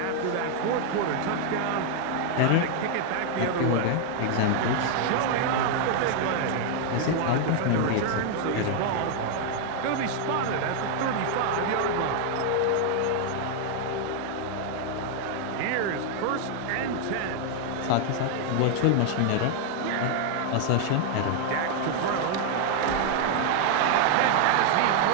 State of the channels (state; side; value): different; both; correlation 0.00